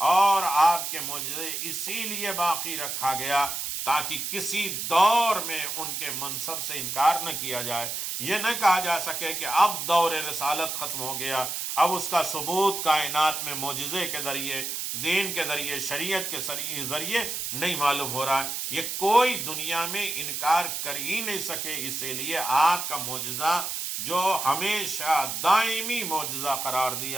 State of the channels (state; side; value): noise; right; hiss, 3 dB below the sound